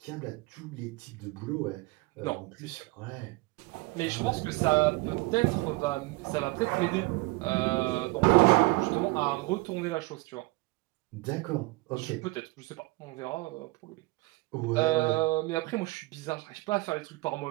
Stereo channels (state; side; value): quieter; left; 22.9 dB